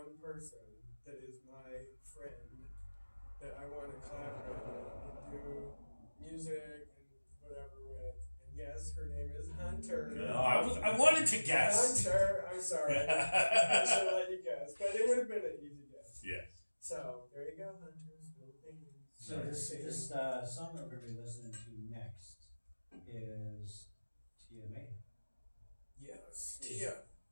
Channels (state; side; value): inverted; both; correlation -1.00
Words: person that is my friend that I want to collaborate with and do music and whatever with. And yes, her name is Hunter. No, I wanted to guess. Hunter, I'm sorry. I should have let you guess, but it would have been an easy guess. Yes. So there you go, Hunter's Philippines. So this song that we're going to be listening to next is Tia May. Yes, Tia.